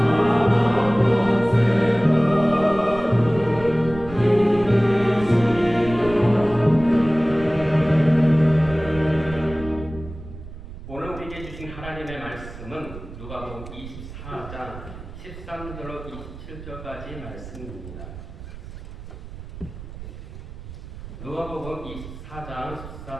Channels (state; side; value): noise; right; rumble, 13 dB below the sound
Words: 오늘 우리에게 주신 하나님의 말씀은 누가복음 24장 13절로 27절까지 말씀입니다. 누가복음 24장